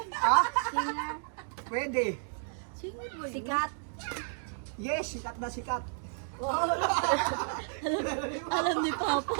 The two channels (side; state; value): left; silent; digital silence